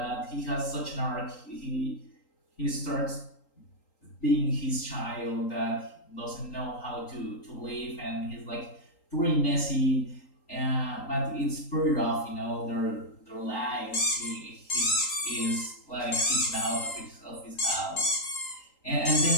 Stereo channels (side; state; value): right; late; 3.8 ms